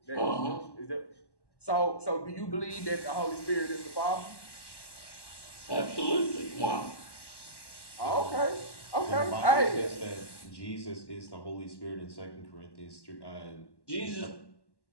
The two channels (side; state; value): right; late; 1.1 ms